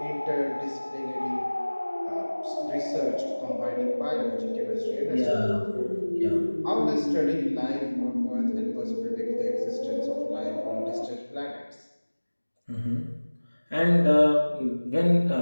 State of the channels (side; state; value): both; inverted; correlation -1.00